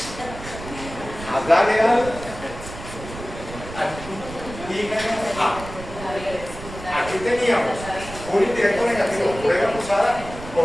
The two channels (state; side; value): noise; right; rumble, 12 dB below the sound